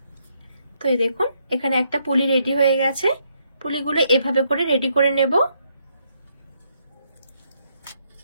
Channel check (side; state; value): both; inverted; correlation -0.75